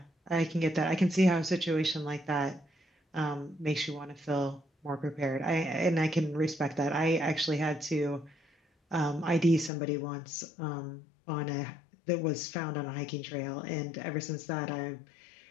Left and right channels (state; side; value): drops out; right; at 9.7 s